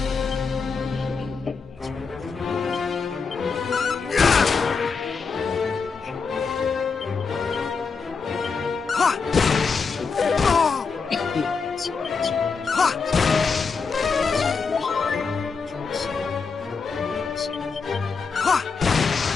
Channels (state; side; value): quieter; right; 5.1 dB